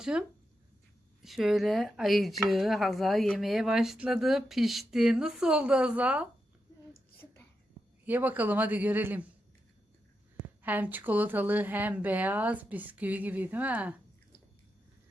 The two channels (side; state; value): both; normal; correlation 0.86